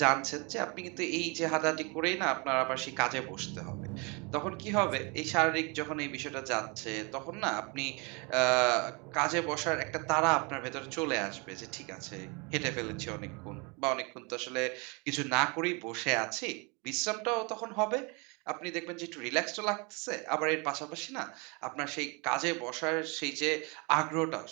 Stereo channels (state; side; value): quieter; left; 30.4 dB